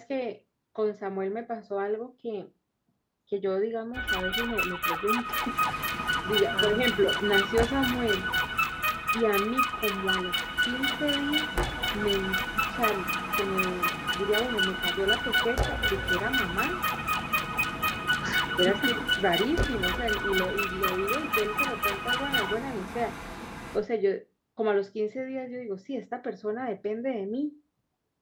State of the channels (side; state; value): both; identical; correlation 1.00